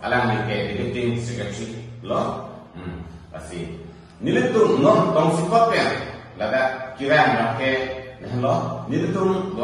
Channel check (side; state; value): both; identical; correlation 1.00